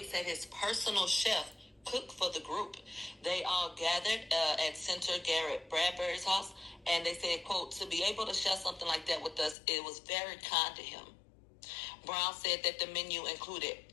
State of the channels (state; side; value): drops out; right; at 9.6 s